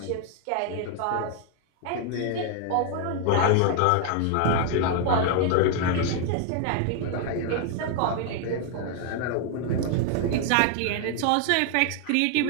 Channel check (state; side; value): different; both; correlation 0.00